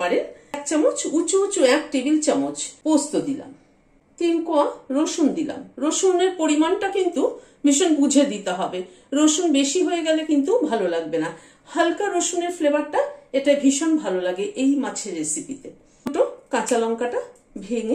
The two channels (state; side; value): identical; both; correlation 1.00